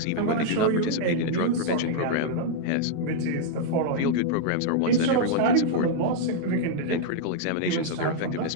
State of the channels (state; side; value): different; both; correlation -0.01